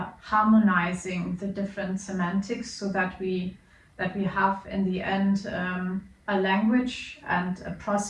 harmonizing the different semantics, so that we have in the end a language and a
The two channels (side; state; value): both; identical; correlation 1.00